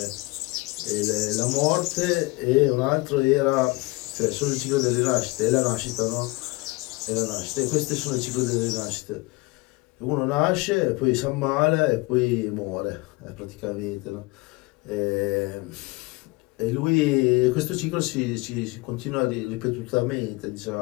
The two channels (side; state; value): right; quieter; 23.8 dB